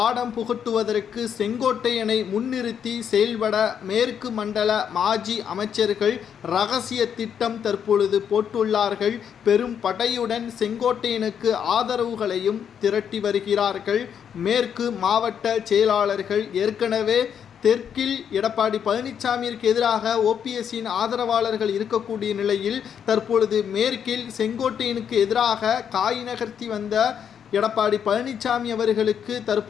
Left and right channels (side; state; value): right; quieter; 8.2 dB